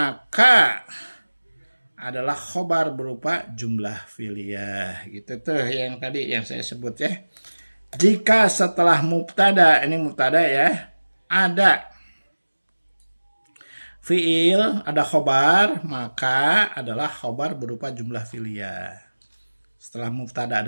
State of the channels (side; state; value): both; inverted; correlation -1.00